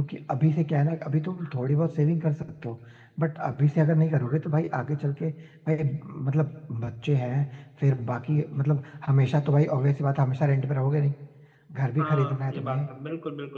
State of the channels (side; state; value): both; identical; correlation 1.00